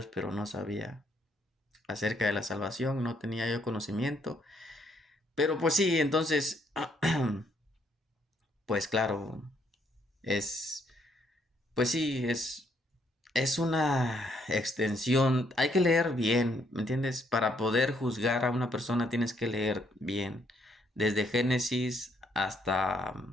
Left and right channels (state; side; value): normal; both; correlation 0.71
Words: pero no sabía acerca de la salvación, no tenía yo conocimiento. Pero pues sí, entonces, pues claro, es, pues sí, es una extensión, hay que leer bien, ¿me entiendes? Para poder juzgar a una persona tienes que leer bien, desde Génesis hasta